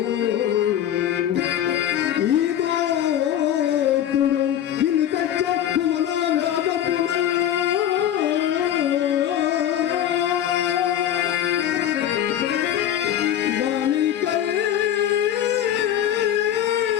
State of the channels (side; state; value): right; quieter; 10.8 dB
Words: ఈ దోతుడు నిన్ను తెచ్చే కుమనా వ్యాధపున